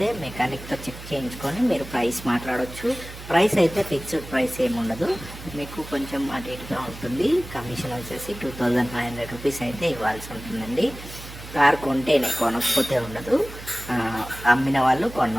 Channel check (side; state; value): right; noise; hum, 14 dB below the sound